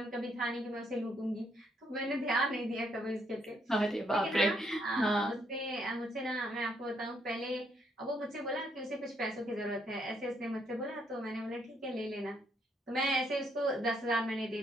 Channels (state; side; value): normal; both; correlation 0.73